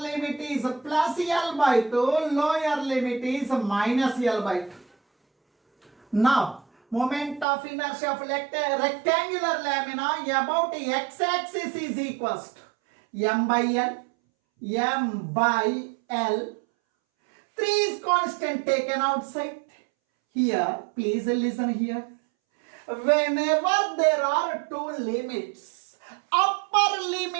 limit is plus L by 2. Lower limit is minus L by 2. Now, moment of inertia of rectangular lamina about x-axis is equals to m by L, m by L. 3 is constant taken outside. Here, please listen here. Whenever there are two limits, upper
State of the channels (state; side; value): drops out; left; at 7.5 s